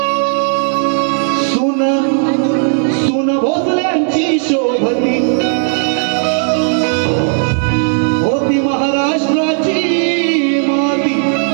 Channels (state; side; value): silent; left; 61 dB below the other